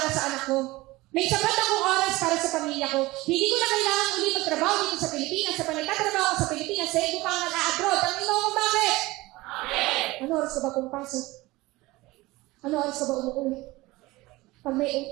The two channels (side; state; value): left; quieter; 20.3 dB